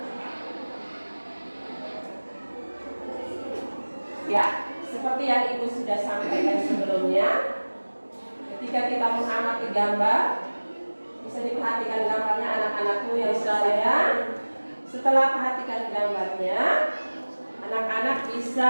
Ya, seperti yang ibu sudah sampaikan sebelumnya, ketika kita mengamati gambar, bisa diperhatikan gambarnya anak-anakku yang sayang. Setelah perhatikan gambarnya, anak-anak bisa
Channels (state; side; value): inverted; both; correlation -1.00